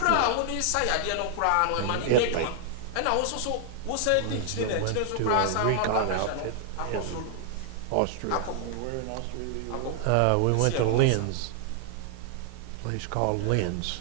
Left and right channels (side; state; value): both; different; correlation 0.00